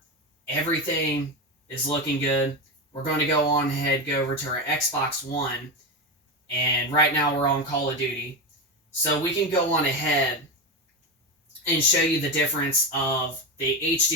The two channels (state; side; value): normal; both; correlation 0.16